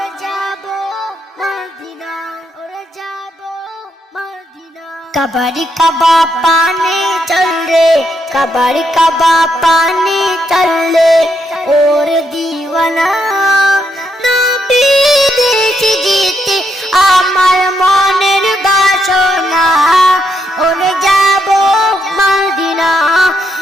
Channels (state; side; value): normal; both; correlation 0.78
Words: যাব মদিনা ওরে যাব মদিনা कबाड़ी कबा पानी चल रे कबाड़ी कबा पानी चल रे और दीवाना नबी देश जीते আমার মনের বাসনা ওরে যাব মদিনা